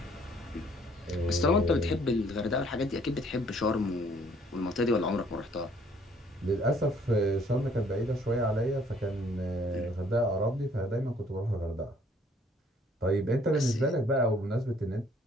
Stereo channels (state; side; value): normal; both; correlation 0.61